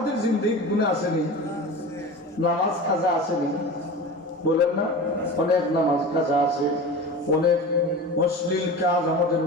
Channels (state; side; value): normal; both; correlation 0.32